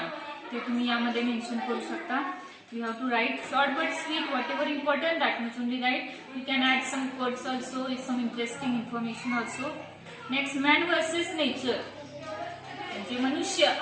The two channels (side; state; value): both; identical; correlation 1.00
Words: ते तुम्ही यामध्ये मेन्शन करू शकता. You have to write short but sweet, whatever important, that much only write. You can add some quotes also, some interesting information also. Next, man versus nature, म्हणजे मनुष्य